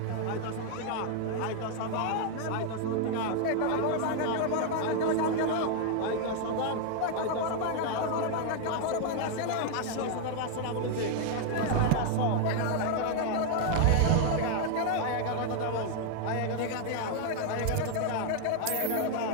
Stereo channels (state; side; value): different; both; correlation 0.00